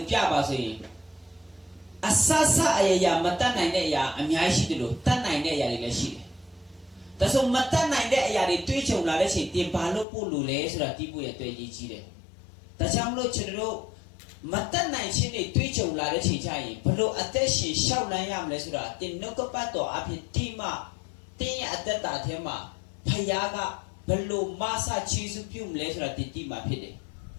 Piaba, so Asasa Aya Matan Nine Ya, and Yashi de Tan Nine Yadi. That's all Matan Nine Yadi Twitch of Ladashi, Timpalo Pulu, so that people at 20. That's how much Chero. Matan Nine Chini Twitch of Ladashi Chai, Palo Ateshi, Shawnayam Lesura, Tinokopato, Apitima, Tin at that Tema, Payaga, Palo Masa Chisupum Lesura Titima Pide.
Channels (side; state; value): right; drops out; at 10.1 s